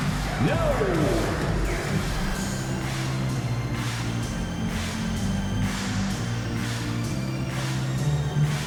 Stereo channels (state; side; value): identical; both; correlation 1.00